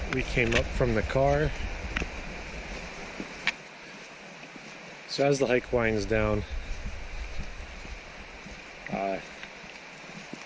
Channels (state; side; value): identical; both; correlation 1.00